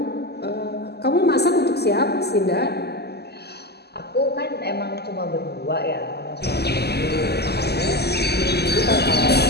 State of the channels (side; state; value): right; late; 0.47 ms